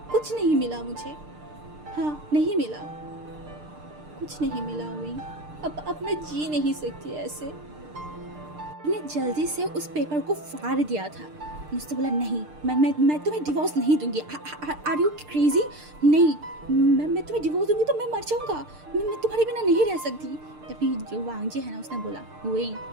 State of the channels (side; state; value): left; late; 6.6 ms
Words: कुछ नहीं मिला मुझे। हाँ, नहीं मिला, कुछ नहीं मिला विंग। अब मैं जी नहीं सकती ऐसे। मैंने जल्दी से उस पेपर को फाड़ दिया था। उसने बोला, नहीं, मैं तुम्हें डिवोर्स नहीं दूंगी। Are you crazy? नहीं, मैं तुम्हें डिवोर्स दूंगी तो मैं मर जाऊंगा। मैं तुम्हारे बिना नहीं रह सकती। तभी जो वांगजी है ना, उसने बोला, विंग